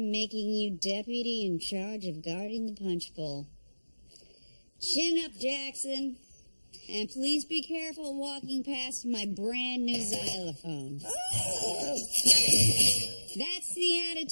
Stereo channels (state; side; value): inverted; both; correlation -1.00